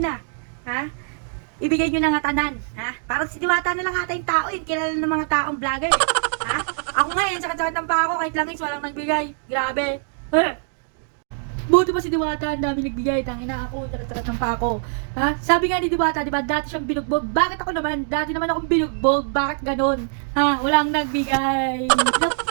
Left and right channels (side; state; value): left; silent; digital silence